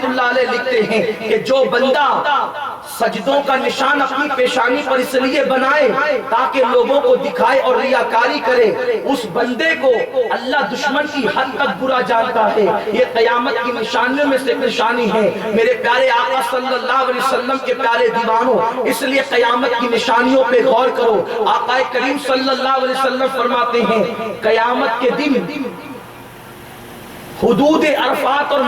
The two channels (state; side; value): identical; both; correlation 1.00